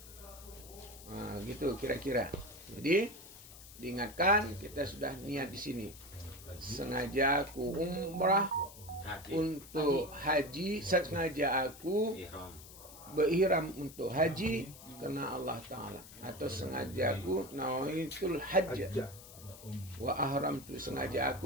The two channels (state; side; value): noise; left; hiss, 17 dB below the sound